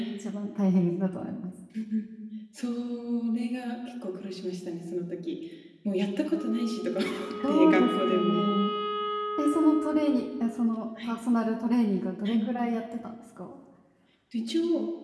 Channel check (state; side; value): identical; both; correlation 1.00